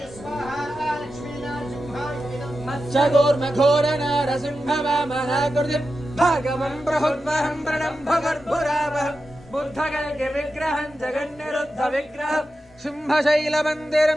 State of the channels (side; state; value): both; normal; correlation 0.91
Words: स्वाहा लक्ष्मीनारसिंहाय इदं मत्स्यगोर्मघोरनारसिंहवामनाकृतिं भागवं प्रहुर्वहं प्रणम्भगर्भुरावहं बुद्धगल्गिविग्रहं जगन्निरुद्धविग्रहं